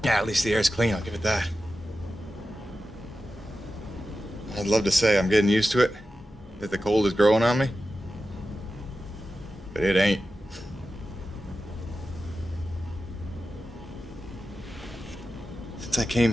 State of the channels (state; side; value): normal; both; correlation 0.92